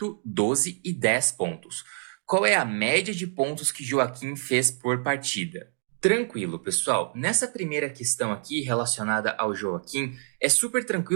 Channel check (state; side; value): silent; left; 59 dB below the other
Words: 12 e 10 pontos. Qual é a média de pontos que Joaquim fez por partida? Tranquilo, pessoal. Nessa primeira questão aqui, relacionada ao Joaquim, é super